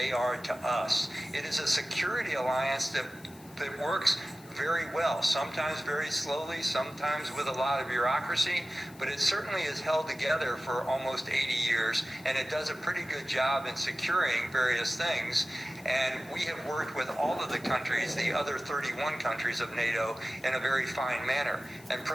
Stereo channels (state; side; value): noise; left; hiss, 23 dB below the sound